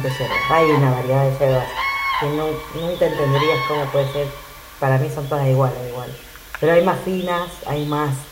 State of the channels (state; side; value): identical; both; correlation 1.00